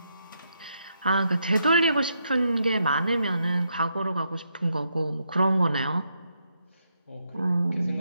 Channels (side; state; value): both; inverted; correlation -0.79